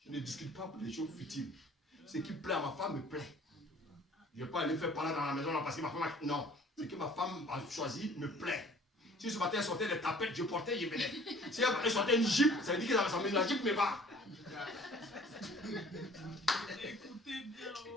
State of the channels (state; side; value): normal; both; correlation 0.51